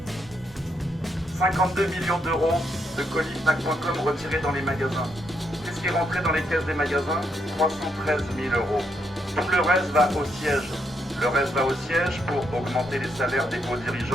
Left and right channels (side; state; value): both; normal; correlation 0.78